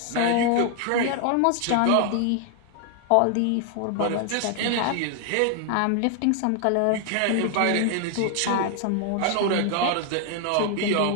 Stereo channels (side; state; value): both; different; correlation 0.00